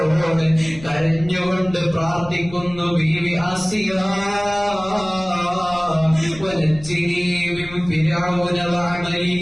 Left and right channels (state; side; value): noise; left; rumble, 17 dB below the sound